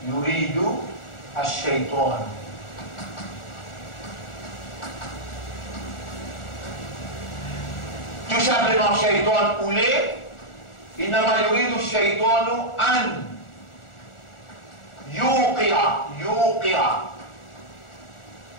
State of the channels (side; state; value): right; late; 1.4 ms